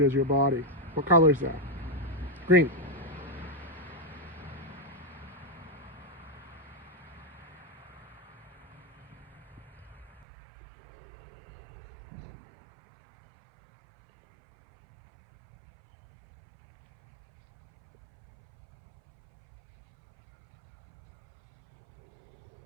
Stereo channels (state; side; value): drops out; left; at 10.2 s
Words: as your body. What color is that? Green.